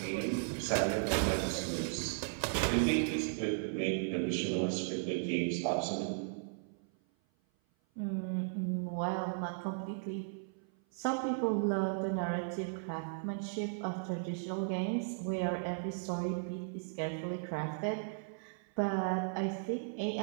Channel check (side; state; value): left; silent; 54 dB below the other